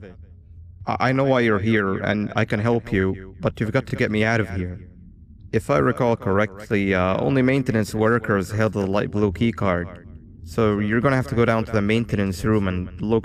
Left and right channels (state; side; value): identical; both; correlation 1.00